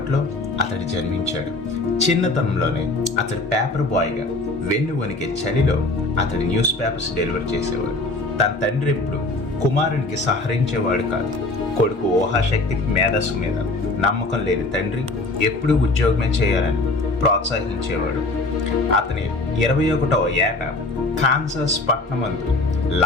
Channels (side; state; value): right; quieter; 3.1 dB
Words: అతడు జన్మించాడు. చిన్నతనంలోనే అతడు పేపర్ బాయ్గా వెన్ను వణికే చలిలో అతడు న్యూస్ పేపర్స్ డెలివర్ చేసేవాడు. తన తండ్రి ఎప్పుడు కుమారునికి సహరించేవాడు కాదు. కొడుకు ఊహాశక్తికి మేధస్సు మీద నమ్మకం లేని తండ్రి ఎప్పుడూ ఉద్యోగమే చేయాలని ప్రోత్సహించేవాడు. అతని 21వ ఏట కాన్సాస్ పట్టణమందు